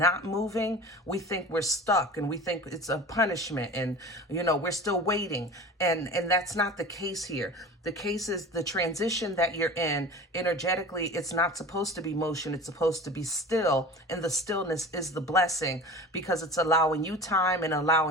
moving, we think we're stuck, and we think it's a punishment, and we're still waiting, and that's not the case here. The case is the transition that you're in energetically. It's not supposed to be motion, it's supposed to be still, and the stillness is the blessing, because it's allowing you time and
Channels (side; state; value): both; normal; correlation 0.37